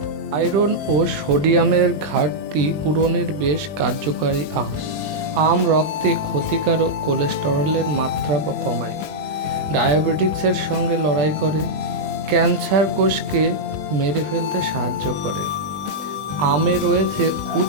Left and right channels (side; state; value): left; late; 20 ms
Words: আয়রন ও সোডিয়ামের ঘাটতি পূরণের বেশ কার্যকারী আম রক্তে ক্ষতিকারক কোলেস্টেরলের মাত্রা কমায়, ডায়াবেটিক্সের সঙ্গে লড়াই করে, ক্যান্সার কোষকে মেরে ফেলতে সাহায্য করে। আমে রয়েছে